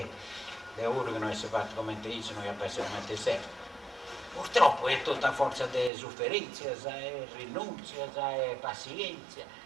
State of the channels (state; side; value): drops out; left; at 5.9 s